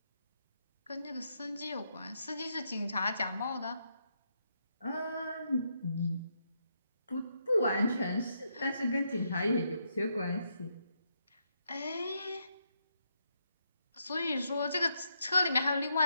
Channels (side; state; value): both; inverted; correlation -0.79